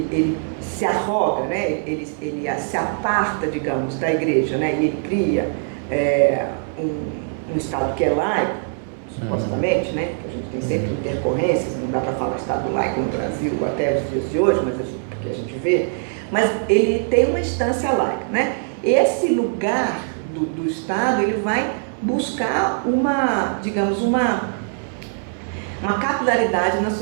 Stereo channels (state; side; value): silent; left; digital silence